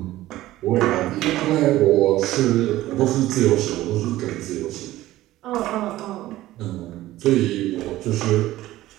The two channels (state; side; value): quieter; left; 15.8 dB